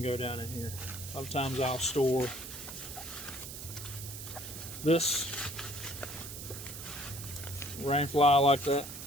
go down in here. A lot of times I'll store this rain fly like that,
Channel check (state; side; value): noise; right; hiss, 10 dB below the sound